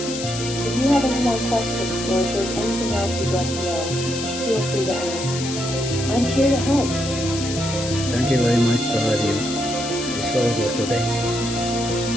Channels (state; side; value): noise; left; hiss, 7 dB below the sound